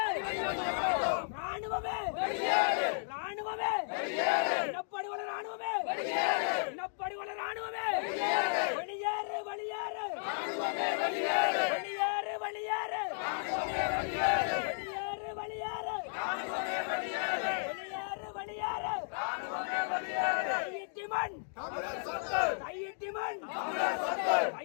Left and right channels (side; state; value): right; silent; digital silence